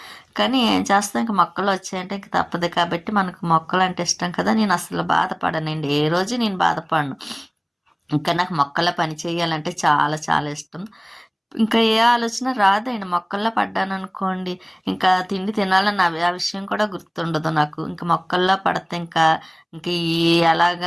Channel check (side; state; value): both; identical; correlation 1.00